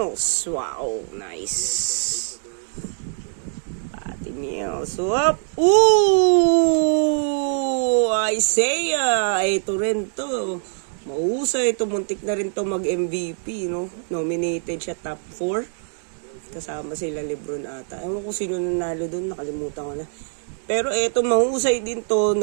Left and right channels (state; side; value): silent; left; 63 dB below the other